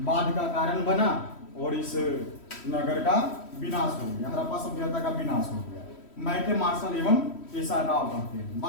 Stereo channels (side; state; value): right; late; 3.1 ms